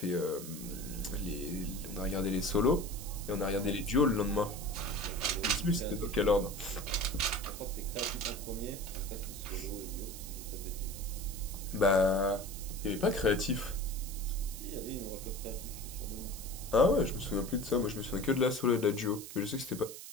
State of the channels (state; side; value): noise; right; hiss, 11 dB below the sound